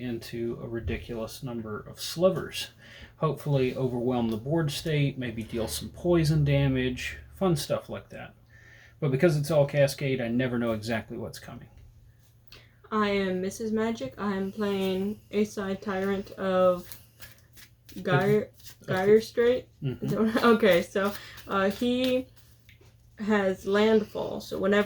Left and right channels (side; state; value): both; identical; correlation 1.00